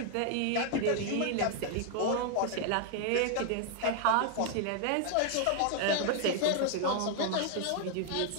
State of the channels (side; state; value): both; different; correlation 0.00